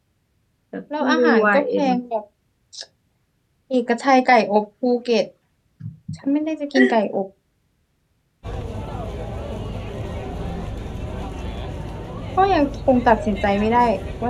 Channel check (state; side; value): identical; both; correlation 1.00